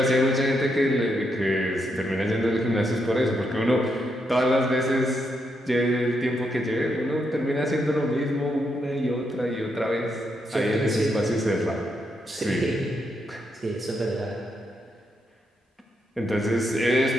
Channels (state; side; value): normal; both; correlation 0.80